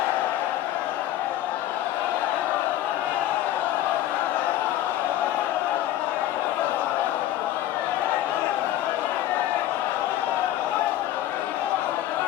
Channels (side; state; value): right; quieter; 13.4 dB